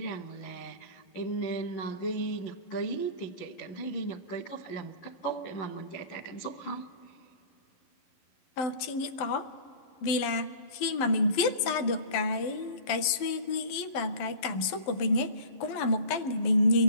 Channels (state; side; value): late; right; 12 ms